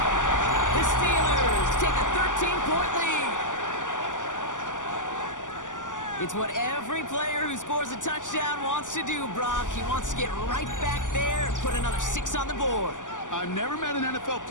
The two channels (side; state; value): right; late; 0.87 ms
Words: The Steelers take a 13-point lead. It's what every player who scores a touchdown wants to do, Brock. He wants to get right back there and put another 6 on the board. I've never met an NFL